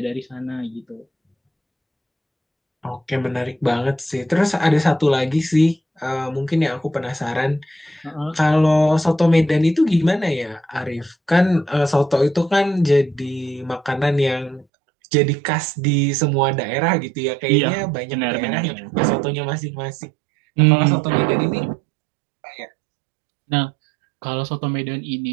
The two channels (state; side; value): drops out; left; at 14.7 s